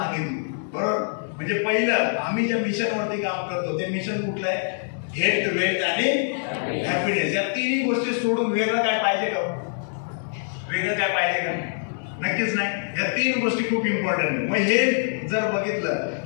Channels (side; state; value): right; silent; 62 dB below the other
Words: बरोबर, म्हणजे पहिलं आम्ही ज्या मिशनवरती काम करतो ते मिशन कुठलं आहे? हेल्थ, वेल्थ आणि हॅपीनेस. या तिन्ही गोष्टी सोडून वेगळं काय पाहिजे का? वेगळं काय पाहिजे का? नक्कीच नाही. या तीन गोष्टी खूप इम्पॉर्टंट आहे. मग हे जर बघितलं